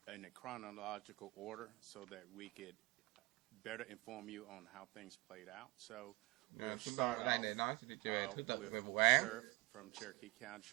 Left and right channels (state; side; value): quieter; left; 25.1 dB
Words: chronological order so that we could better inform you on how things played out. So we'll start off with Sheriff from Cherokee County,